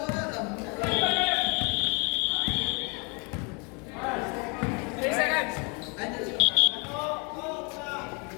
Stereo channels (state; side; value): quieter; right; 32.3 dB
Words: Wala na. 3 seconds.